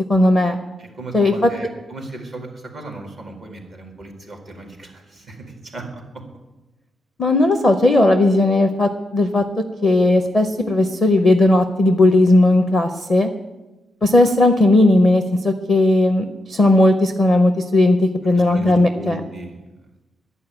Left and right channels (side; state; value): both; normal; correlation 0.84